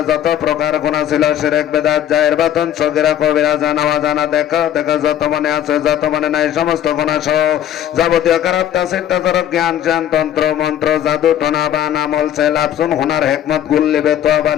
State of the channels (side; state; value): right; quieter; 10.8 dB